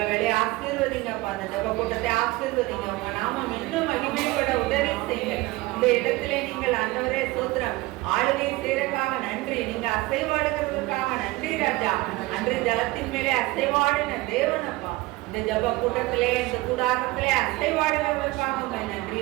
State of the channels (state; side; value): quieter; left; 20.6 dB